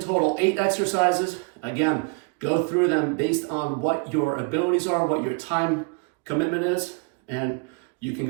8 exercises. Again, go through them based on what your abilities are, what your time commitment is, and you can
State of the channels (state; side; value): quieter; left; 33.8 dB